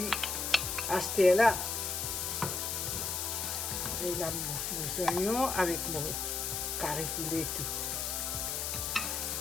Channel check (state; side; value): noise; left; hiss, 1 dB below the sound